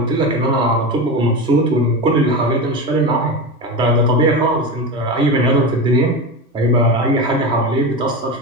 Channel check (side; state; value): both; normal; correlation 0.22